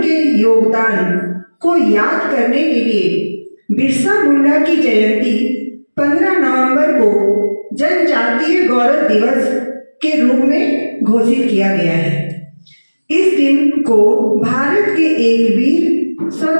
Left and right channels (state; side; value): inverted; both; correlation -1.00